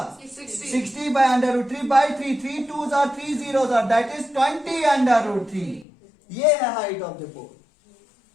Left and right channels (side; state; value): right; drops out; at 5.9 s